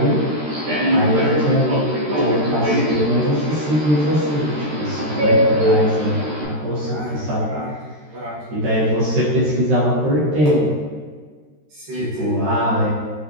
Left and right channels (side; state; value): left; late; 13 ms